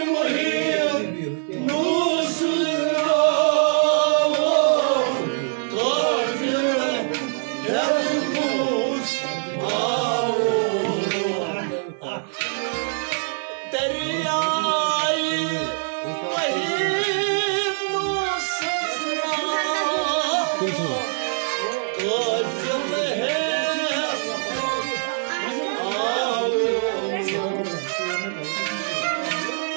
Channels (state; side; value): silent; left; 56 dB below the other